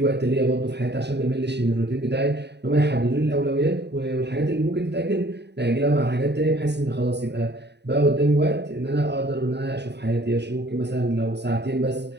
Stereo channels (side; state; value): left; late; 0.50 ms